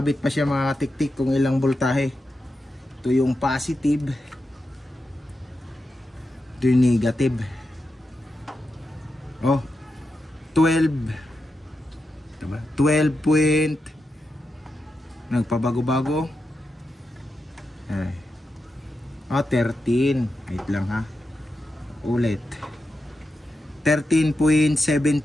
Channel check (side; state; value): both; normal; correlation 0.88